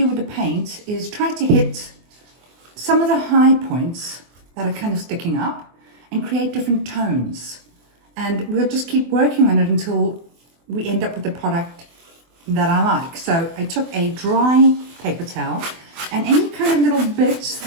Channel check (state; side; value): late; left; 24 ms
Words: do with the paint is try to hit some of the high points that are kind of sticking up and create different tones. And we'll just keep working on it until we end up with the product that I like. So I took a dry paper towel, and any kind of little bits